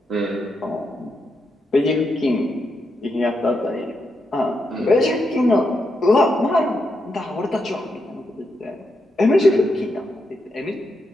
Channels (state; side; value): normal; both; correlation 0.83